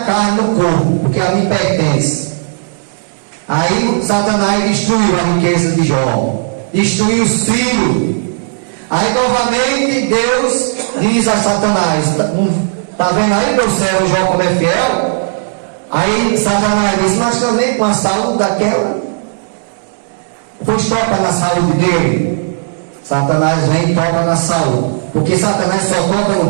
carne, no corpo, porque a mim pertence. Aí Satanás destruiu a riqueza de Jó, destruiu os filhos. Aí novamente Deus diz a Satanás, está vendo aí meu servo Jó como é fiel? Aí Satanás diz, mas também com a saúde daquela, pois toca na saúde dele. Satanás vem e toca na saúde, porque Satanás só toca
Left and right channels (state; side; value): silent; left; 71 dB below the other